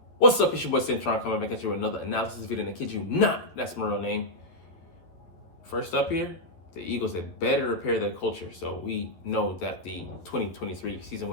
What's up? It's your boy Cintron coming back at you with another analysis video, and I kid you not, that's my real name. First up here, the Eagles had better repair their culture. So we know that the 2023 season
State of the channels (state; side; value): late; right; 12 ms